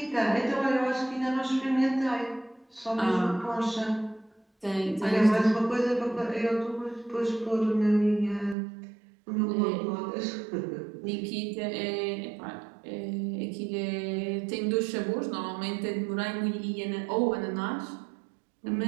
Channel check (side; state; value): left; drops out; at 8.6 s